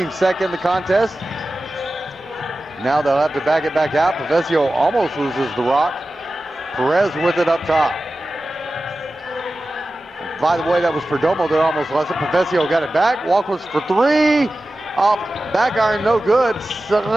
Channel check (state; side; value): normal; both; correlation 0.94